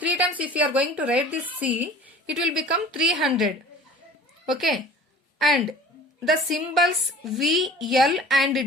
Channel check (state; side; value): normal; both; correlation 0.43